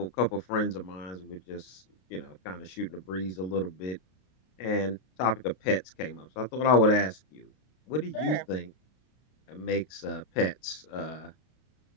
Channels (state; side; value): late; right; 32 ms